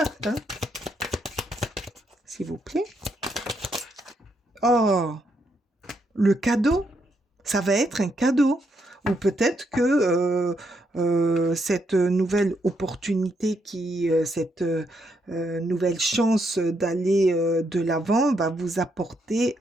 hein. S'il vous plaît. Oh, le cadeau, ça va être un cadeau. Ou peut-être que cette nouvelle opportunité, cette nouvelle chance d'aller de l'avant va vous apporter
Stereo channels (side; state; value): both; normal; correlation 0.77